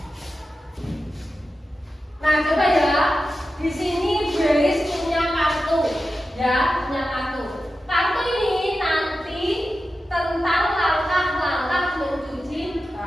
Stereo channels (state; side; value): normal; both; correlation 0.92